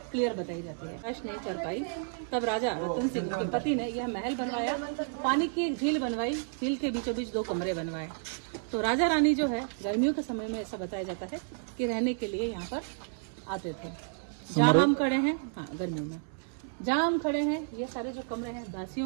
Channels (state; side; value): silent; left; 57 dB below the other